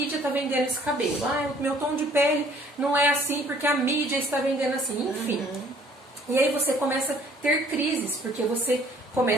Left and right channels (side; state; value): both; normal; correlation 0.58